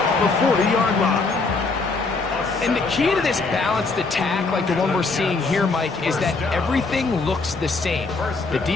the 40-yard line. And the key to this balanced attack, like the one we're seeing here, Mike, is that everything looks the same. The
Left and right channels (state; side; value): quieter; right; 3.9 dB